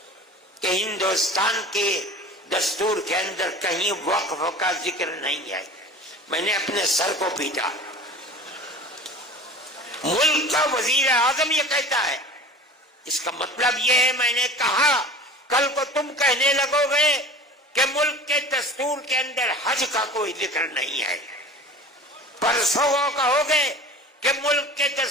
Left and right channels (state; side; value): normal; both; correlation 0.39